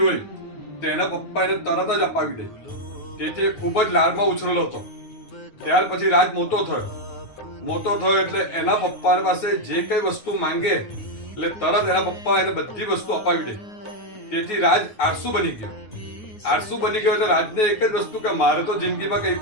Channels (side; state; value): right; late; 9.3 ms